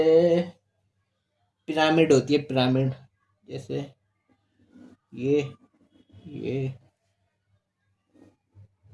पिरामिड होती है, पिरामिड। जैसे ये ये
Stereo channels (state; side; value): identical; both; correlation 1.00